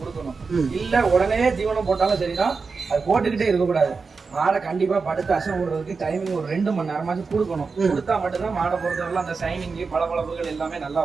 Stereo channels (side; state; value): left; quieter; 4.7 dB